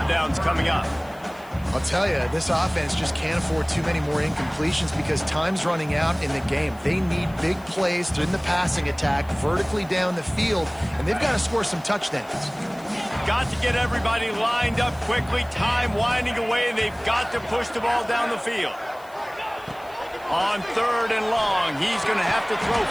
down's coming up. I'll tell you, this offense just can't afford too many more incompletions because time's running out in the game. They need big plays in the passing attack, vertically down the field, and they've got to score some touchdowns. Got to get everybody lined up quickly, time winding away, and they've got to push the ball down the field. On 3rd and long, he's going to have to throw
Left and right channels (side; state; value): left; noise; hiss, 26 dB below the sound